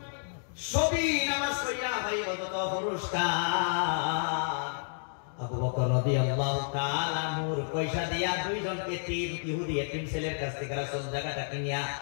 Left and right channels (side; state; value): right; silent; digital silence